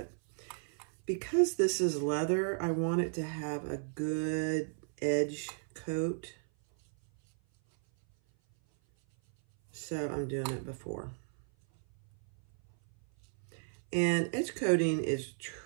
because this is leather, I want it to have a good edge coat. So I'm doing it before. And edge coating is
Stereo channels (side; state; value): left; silent; 55 dB below the other